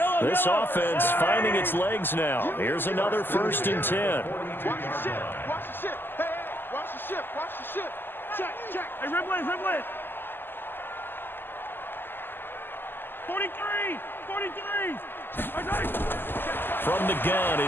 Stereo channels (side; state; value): right; late; 0.097 ms